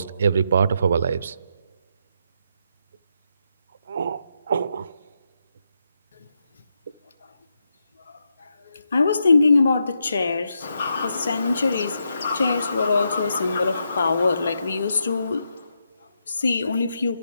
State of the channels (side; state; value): both; inverted; correlation -0.82